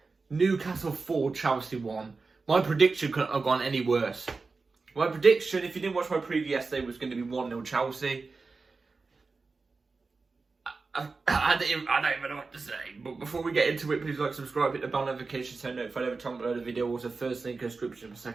Newcastle 4, Chelsea 1. My prediction couldn't have gone any worse. My prediction, if you didn't watch my preview yesterday, was going to be 1-0 Chelsea. I don't even know what to say, but before we get into it, please like, subscribe, hit the bell notification so notified every time I upload a video. Also, first link in the description for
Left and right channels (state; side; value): quieter; left; 4.1 dB